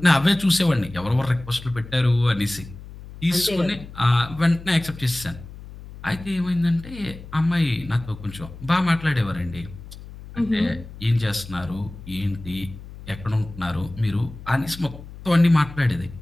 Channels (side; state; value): left; noise; hum, 15 dB below the sound